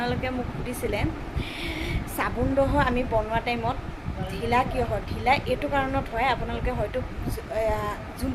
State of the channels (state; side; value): identical; both; correlation 1.00